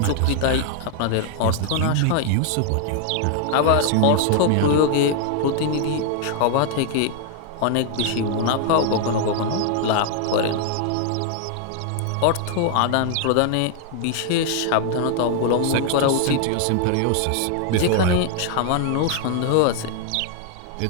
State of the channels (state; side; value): different; both; correlation 0.00